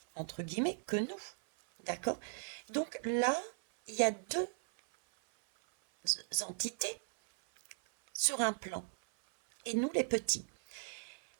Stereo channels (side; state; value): left; silent; 53 dB below the other